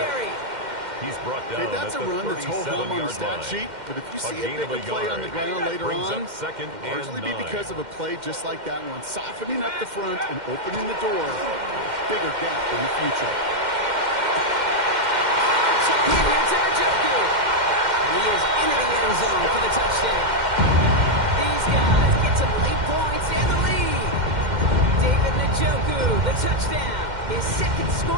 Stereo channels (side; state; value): left; late; 2.1 ms